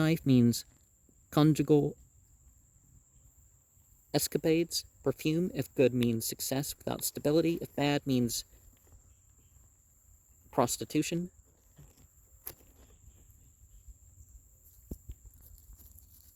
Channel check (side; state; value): both; identical; correlation 1.00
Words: means conjugal escapades. Perfume, if good, means success without stability. If bad, means prostitution.